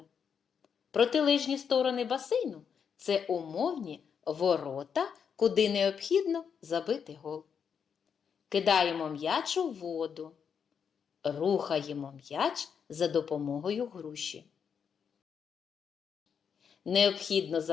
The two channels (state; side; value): quieter; right; 7.0 dB